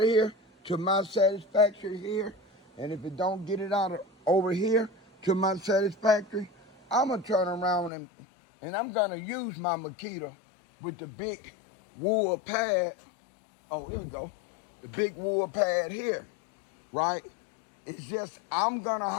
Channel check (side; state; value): right; drops out; at 7.9 s